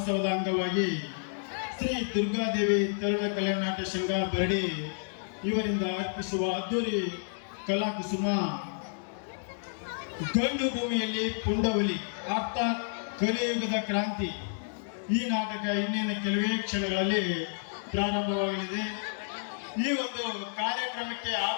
ಅಂಗವಾಗಿ ಶ್ರೀ ದುರ್ಗಾದೇವಿ ತರುಣ ಕಲ್ಯಾಣ ನಾಟ್ಯ ಸಂಘ ಬರಡಿ ಇವರಿಂದ ಅರ್ಪಿಸುವ ಅದ್ದೂರಿ ಕಲಾಕುಸುಮ ಗಂಡು ಭೂಮಿಯಲ್ಲಿ ಪುಂಡವಲಿ ಅರ್ಥಾತ್ ಕಲಿಯುಗದ ಕ್ರಾಂತಿ. ಈ ನಾಟಕ ಇನ್ನೇನು ಕೆಲವೇ ಕ್ಷಣಗಳಲ್ಲಿ ಪ್ರಾರಂಭವಾಗಲಿದೆ. ಈ ಒಂದು ಕಾರ್ಯಕ್ರಮಕ್ಕೆ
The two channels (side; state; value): right; silent; digital silence